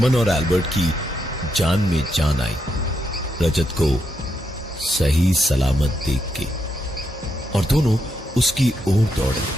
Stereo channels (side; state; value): both; normal; correlation 0.81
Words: और एल्बर्ट की जान में जान आई रजत को सही सलामत देख के, और दोनों उसकी ओर दौड़े।